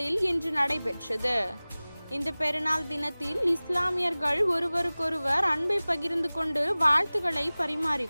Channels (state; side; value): inverted; both; correlation -0.99